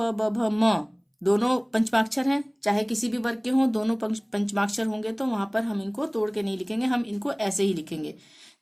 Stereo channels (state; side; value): identical; both; correlation 1.00